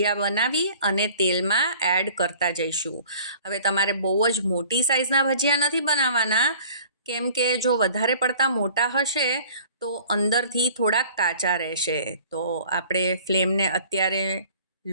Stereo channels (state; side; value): inverted; both; correlation -0.50